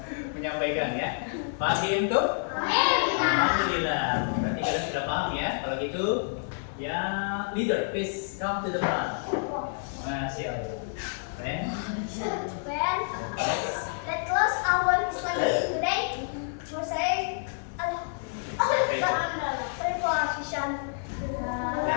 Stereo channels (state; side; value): silent; right; 58 dB below the other